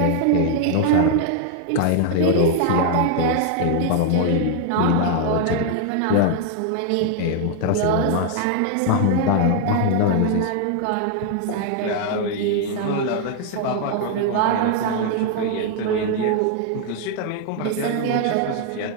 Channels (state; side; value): different; both; correlation 0.00